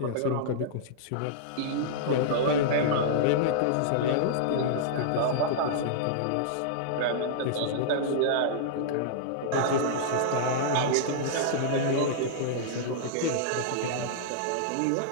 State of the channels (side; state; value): both; different; correlation -0.02